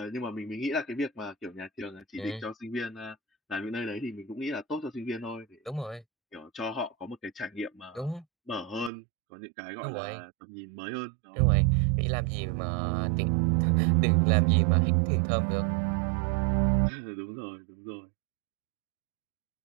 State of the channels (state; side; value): drops out; left; at 8.9 s